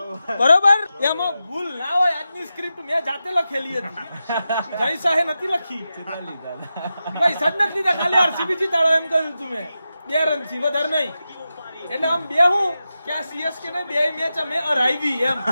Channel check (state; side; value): inverted; both; correlation -0.91